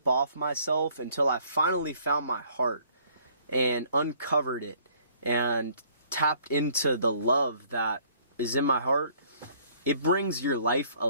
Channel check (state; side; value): inverted; both; correlation -0.60